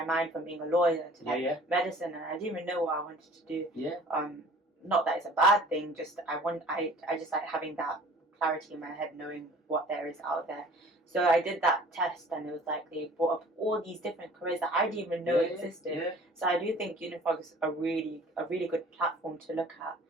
mind from being a lawyer to medicine, and I didn't even know what I wanted to do. Not that it's a bad thing, just I just like having that clarity in my head, knowing what there is out there. So I did that test, and it was like they brought up all these different careers that I didn't even know existed. So I do think Unifrog is a really good platform to look at.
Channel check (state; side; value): normal; both; correlation 0.49